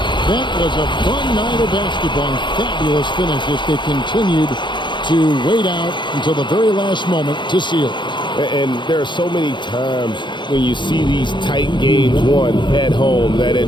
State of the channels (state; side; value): late; right; 0.23 ms